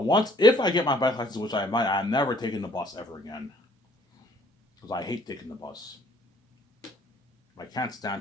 if I get my bike license, which I might, I'm never taking the bus ever again, because I hate taking the bus. I can't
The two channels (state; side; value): normal; both; correlation 0.59